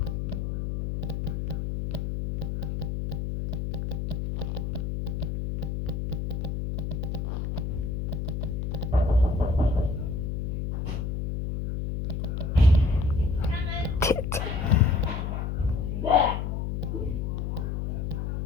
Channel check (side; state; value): left; noise; hum, 2 dB below the sound